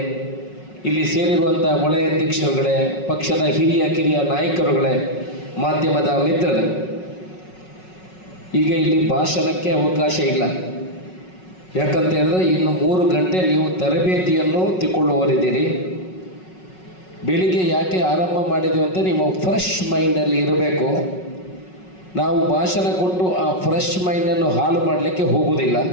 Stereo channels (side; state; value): right; late; 5.4 ms